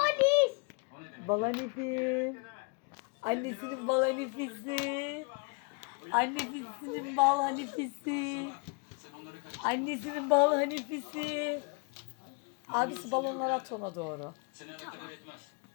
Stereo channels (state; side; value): quieter; right; 33.3 dB